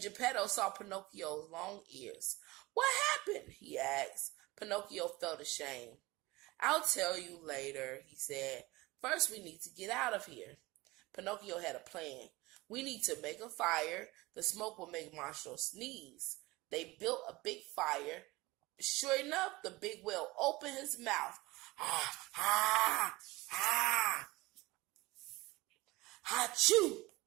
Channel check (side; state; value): left; quieter; 21.2 dB